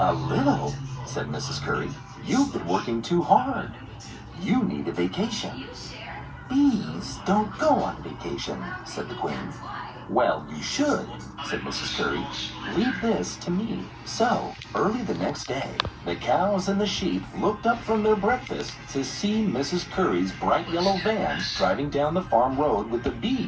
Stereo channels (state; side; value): identical; both; correlation 1.00